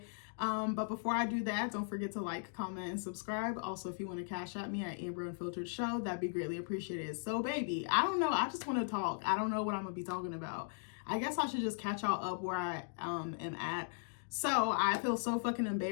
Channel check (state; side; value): silent; right; digital silence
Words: But before I do that, don't forget to like, comment, and subscribe. Also, if you want to cash at me at Amber Unfiltered Show, that'd be greatly appreciated. So baby, I don't know. I just want to talk. I don't know what I'm gonna be talking about. I guess I should just catch y'all up where I am at. So I feel so fucking